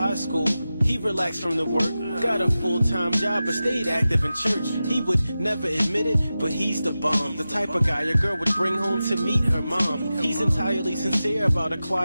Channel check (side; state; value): both; inverted; correlation -0.94